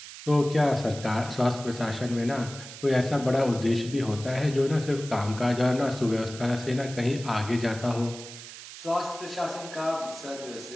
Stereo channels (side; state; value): right; noise; hiss, 14 dB below the sound